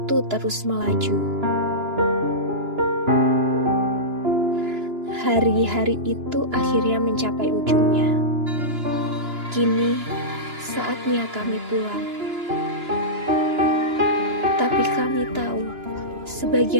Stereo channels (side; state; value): left; late; 2.9 ms